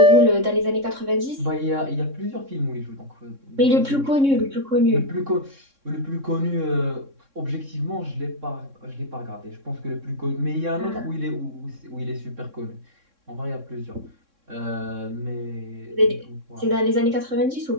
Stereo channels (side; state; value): left; late; 3.6 ms